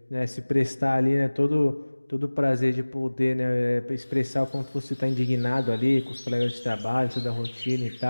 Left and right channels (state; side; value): inverted; both; correlation -1.00